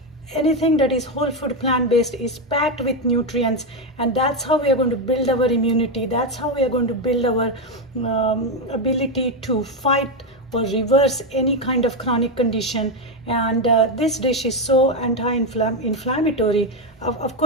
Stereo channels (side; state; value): both; normal; correlation 0.08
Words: Anything that is whole food plant-based is packed with nutrients, and that's how we are going to build our immunity. That's how we are going to build our ability to fight or reverse any kind of chronic condition. And this dish is so anti-inflammatory. Of